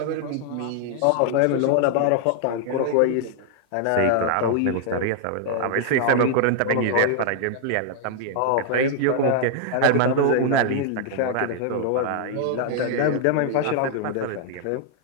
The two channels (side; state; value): both; different; correlation -0.01